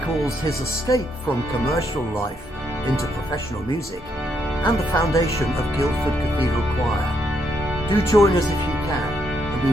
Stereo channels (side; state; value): both; normal; correlation 0.76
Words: his escape from commercial life into professional music and the foundation of Guildford Cathedral Choir. Do join us if you can, and we